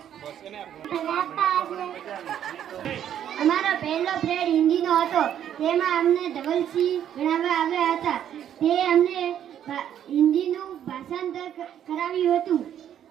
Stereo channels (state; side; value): quieter; left; 10.1 dB